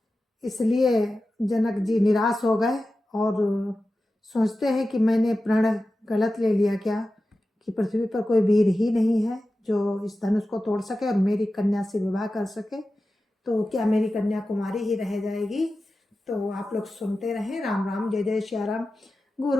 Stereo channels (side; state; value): both; normal; correlation 0.94